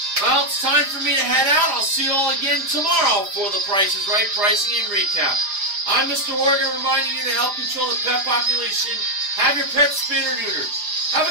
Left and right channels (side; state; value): left; late; 4.9 ms